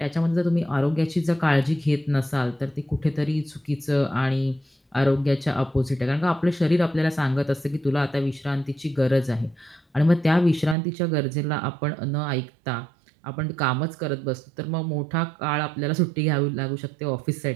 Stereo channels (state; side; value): drops out; left; at 10.8 s